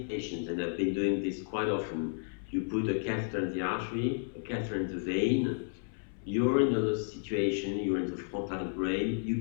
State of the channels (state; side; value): silent; right; 56 dB below the other